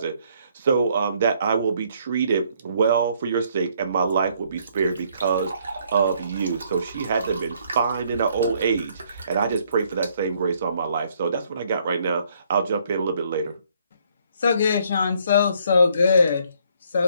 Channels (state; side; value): inverted; both; correlation -0.67